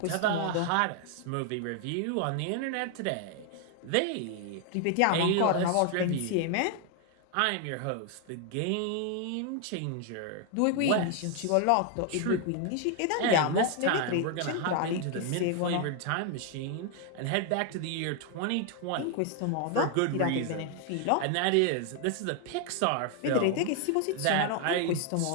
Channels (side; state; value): both; different; correlation 0.00